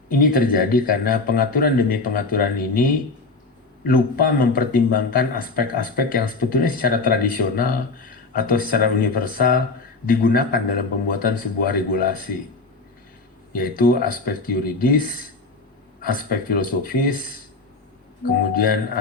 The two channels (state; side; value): quieter; right; 3.7 dB